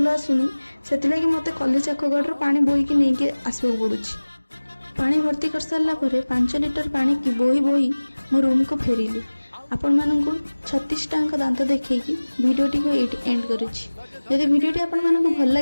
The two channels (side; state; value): both; inverted; correlation -1.00